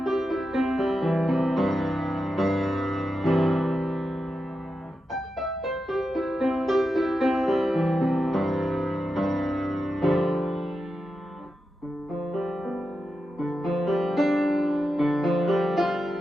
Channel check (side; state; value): both; normal; correlation 0.89